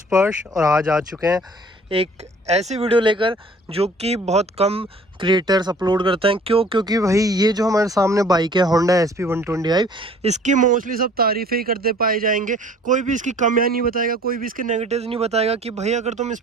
और आज आ चुके हैं एक ऐसी वीडियो लेकर जो कि बहुत कम क्रिएटर्स अपलोड करते हैं। क्योंकि भाई ये जो हमारे सामने बाइक है होंडा SP125, इसकी मोस्टली सब तारीफ़ें ही करते पाए जाएंगे। कोई भी इसकी कमियां नहीं बताएगा, कोई भी इसके नेगेटिव्स नहीं बताएगा कि भाई अगर तुम इस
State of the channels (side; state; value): both; normal; correlation 0.52